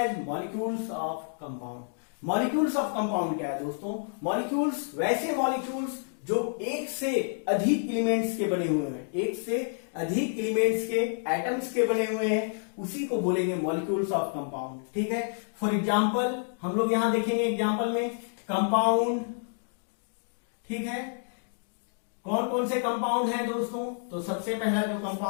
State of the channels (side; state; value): right; silent; digital silence